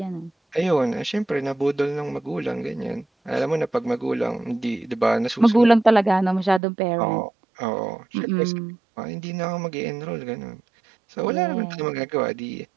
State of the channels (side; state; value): left; drops out; at 6.6 s